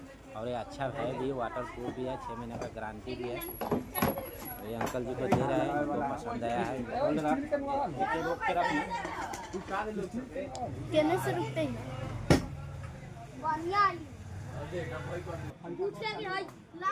और ये अच्छा है भी, वाटर प्रूफ भी है, 6 महीने का गारंटी भी है। तो ये अंकल जी को दे रहा है, इनको पसंद आया है। कहने से रुकते ही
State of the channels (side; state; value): both; identical; correlation 1.00